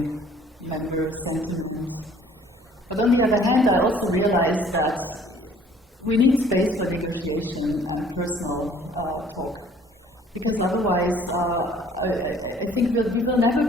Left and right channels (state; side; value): normal; both; correlation 0.56